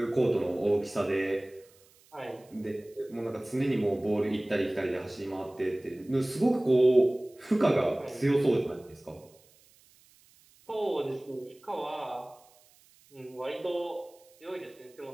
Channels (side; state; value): right; noise; hiss, 29 dB below the sound